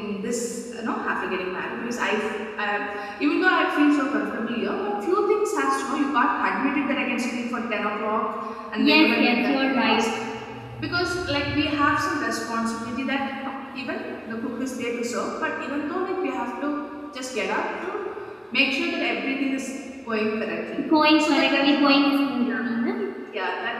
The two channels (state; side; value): identical; both; correlation 1.00